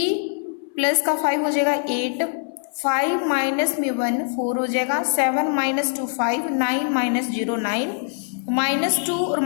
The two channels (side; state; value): right; silent; 60 dB below the other